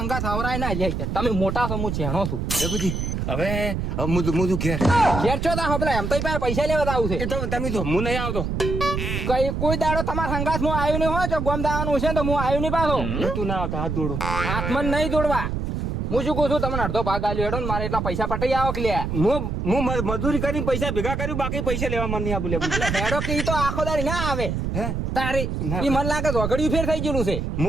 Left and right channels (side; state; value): right; noise; rumble, 2 dB below the sound